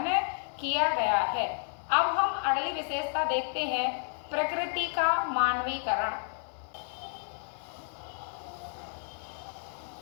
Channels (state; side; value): silent; right; 57 dB below the other